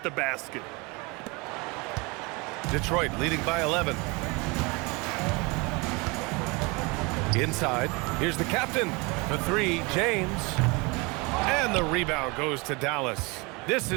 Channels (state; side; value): quieter; left; 27.4 dB